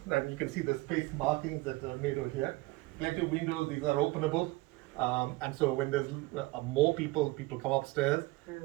and you can see the space markings that are made over here. Plenty of windows, these are openable. And so when there's more people come upstairs,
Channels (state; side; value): quieter; left; 21.4 dB